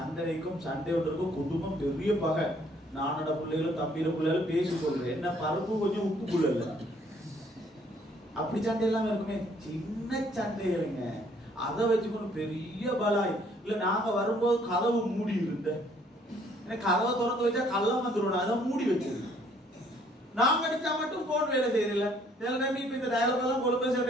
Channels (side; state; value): both; normal; correlation 0.63